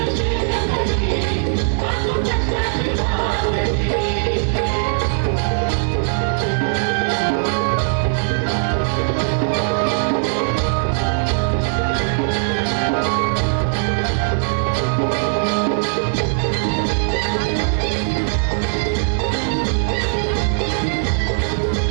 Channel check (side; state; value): left; silent; 66 dB below the other